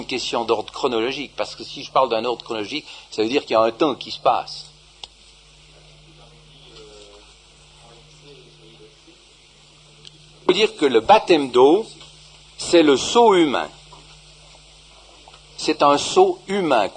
question d'ordre chronologique, parce que si je parle d'un ordre chronologique, ça veut dire qu'il y a un temps qui se passe. Ça veut dire que le baptême d'eau, c'est le sceau humain. C'est un sceau humain,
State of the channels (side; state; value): both; identical; correlation 1.00